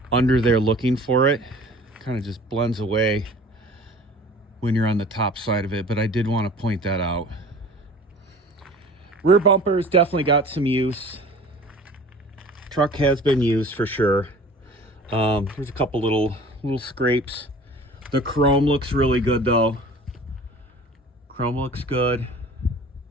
under there looking for it. Kind of just blends away when you're on the top side of it, but I did want to point that out. Rear bumpers definitely got some use. Truck has been used for sure. There's a couple little scrapes. The chrome looks really good though. Chrome looks good.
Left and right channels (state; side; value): normal; both; correlation 0.45